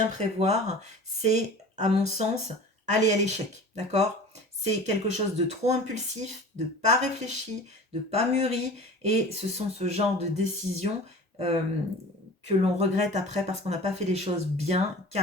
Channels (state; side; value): normal; both; correlation 0.39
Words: prévoir, c'est, à mon sens, aller à l'échec. D'accord. C'est quelque chose de trop impulsif, de pas réfléchi, de pas mûri, et ce sont ce genre de décisions que l'on regrette après parce qu'on n'a pas fait les choses bien,